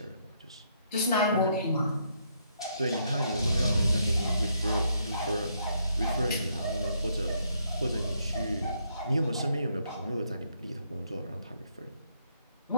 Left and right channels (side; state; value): both; inverted; correlation -0.73